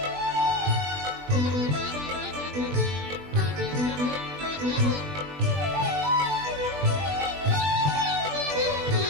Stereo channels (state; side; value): late; left; 20 ms